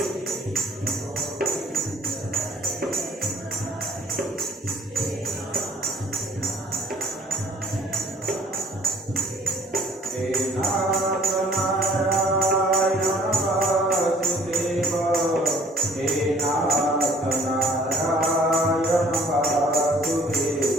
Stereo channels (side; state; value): both; normal; correlation 0.55